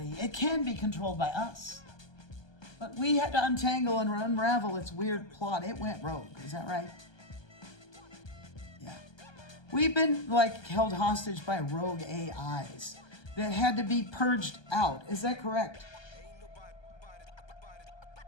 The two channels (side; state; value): right; late; 1.2 ms